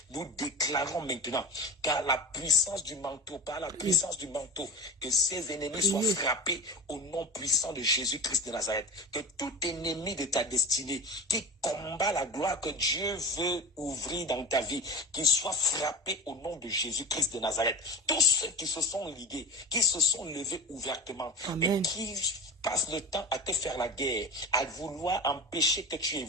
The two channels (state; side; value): normal; both; correlation 0.31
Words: Nous déclarons maintenant qu'à la puissance du manteau, par la puissance du manteau, que ces ennemis soient frappés au nom puissant de Jésus-Christ de Nazareth. Que tout ennemi de ta destinée qui combat la gloire que Dieu veut ouvrir dans ta vie, qu'il soit frappé au nom de Jésus-Christ de Nazareth. Tous ceux qui se sont ligués, qui se sont levés ouvertement, et qui passe le temps à te faire la guerre, à vouloir empêcher que tu